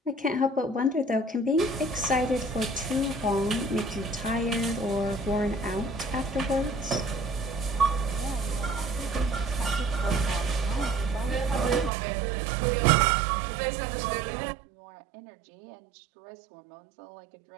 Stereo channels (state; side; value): drops out; left; at 11.9 s